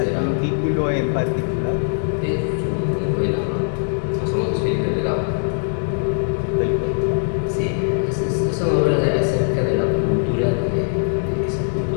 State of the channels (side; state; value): right; silent; digital silence